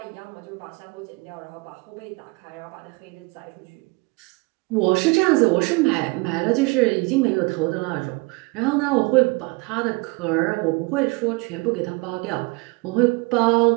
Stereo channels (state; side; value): quieter; left; 27.4 dB